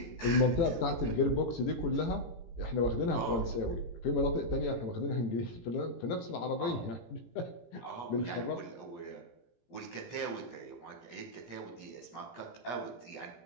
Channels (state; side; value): late; right; 17 ms